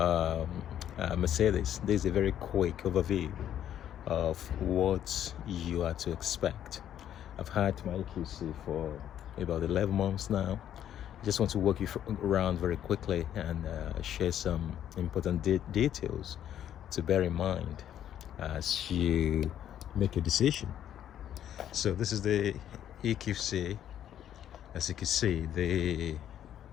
Mercedes, this is a very quick overview of what you are to expect. I've had my EQC for about 11 months now. I just want to walk you around very quickly and share some important details to bear in mind as you make a decision. So this is the EQC. As you can see, the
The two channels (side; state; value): right; quieter; 10.6 dB